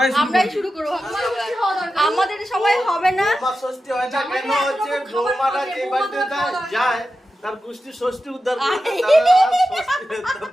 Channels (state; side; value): normal; both; correlation 0.91